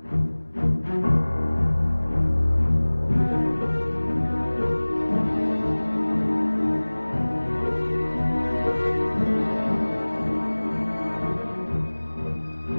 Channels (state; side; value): inverted; both; correlation -1.00